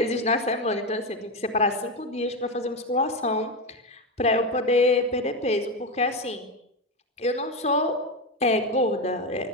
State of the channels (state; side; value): normal; both; correlation 0.13